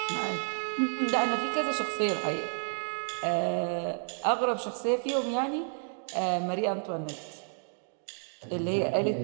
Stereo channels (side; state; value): left; silent; 56 dB below the other